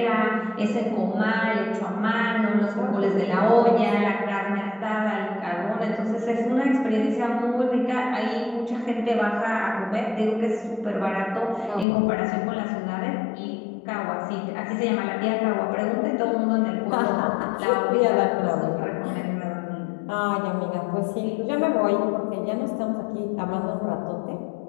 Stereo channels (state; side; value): drops out; right; at 11.9 s